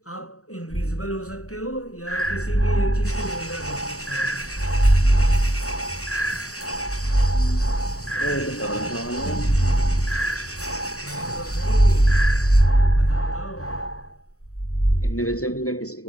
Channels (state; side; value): late; right; 0.65 ms